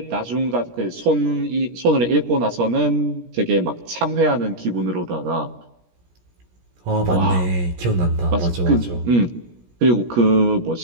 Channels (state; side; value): late; left; 17 ms